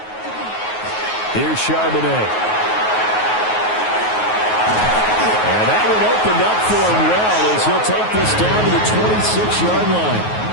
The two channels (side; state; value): right; late; 9.4 ms